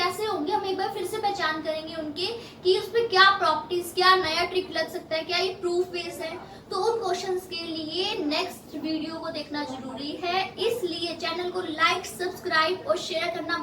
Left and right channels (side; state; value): both; identical; correlation 1.00